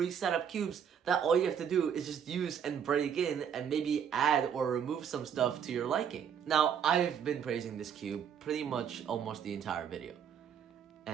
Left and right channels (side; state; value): left; quieter; 8.0 dB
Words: up cubes that all you have to do is just use and break in and maybe add or remove some stuff to your liking. Now, I've been praising this cube pretty much almost the entire video.